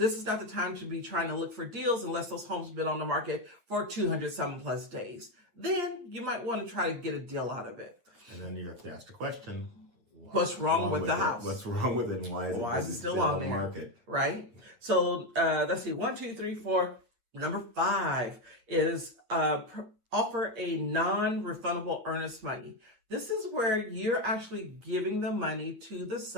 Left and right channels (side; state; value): left; late; 8.8 ms